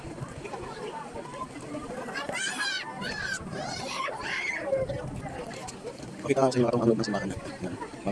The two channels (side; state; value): both; identical; correlation 1.00